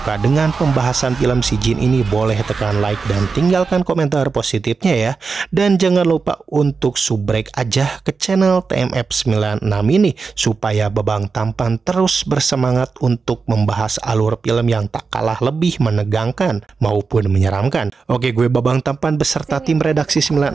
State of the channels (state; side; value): quieter; left; 4.8 dB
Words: dengan pembahasan film Si Jin ini, boleh tekan like dan tinggalkan komentar positifnya ya. Dan jangan lupa untuk subrek aja ke channel TMF96 ini, supaya Babang Tampan terus bersemangat untuk membahas alur film yang tak kalah lebih menegangkan maupun menyeramkan. Oke, gue Babang Tampan beserta tim redaksi 96